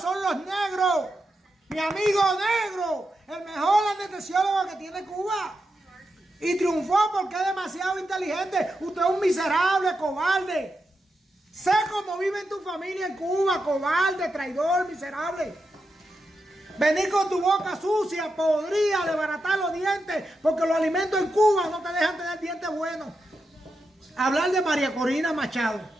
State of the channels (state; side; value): normal; both; correlation 0.87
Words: los negros. Mi amigo negro, el mejor anestesiólogo que tiene Cuba. Y triunfó porque es demasiado inteligente. Usted es un miserable, cobarde. Sé cómo vive en tu familia en Cuba, cobarde, traidor, miserable. Venir con tu boca sucia, podría desbaratar los dientes, porque los alimentos en Cuba no te dejan tener dientes buenos. Hablar de María Corina Machado.